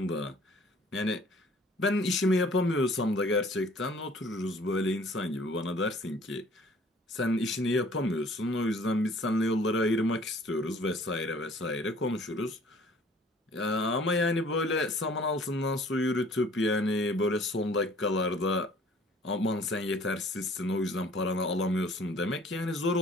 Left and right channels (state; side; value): normal; both; correlation 0.54